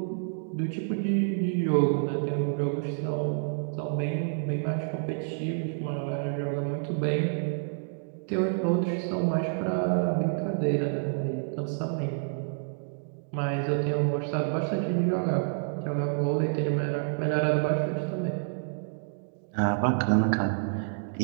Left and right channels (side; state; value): left; silent; digital silence